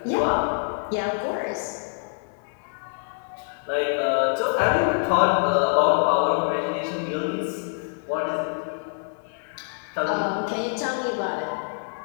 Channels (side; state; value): right; silent; digital silence